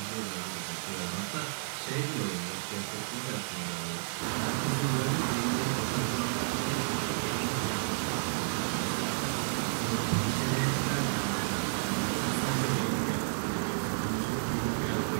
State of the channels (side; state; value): left; silent; digital silence